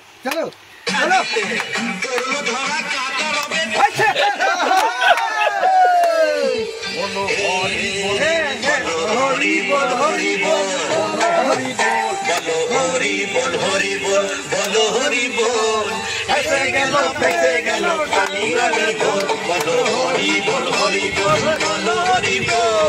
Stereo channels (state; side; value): identical; both; correlation 1.00